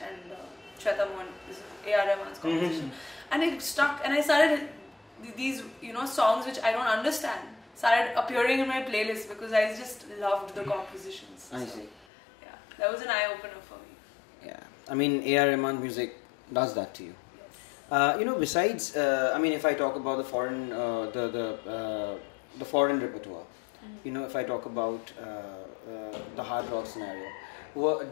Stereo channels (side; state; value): right; drops out; at 12.1 s